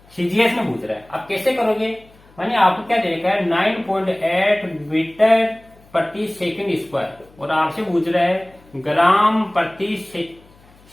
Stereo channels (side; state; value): left; noise; hum, 28 dB below the sound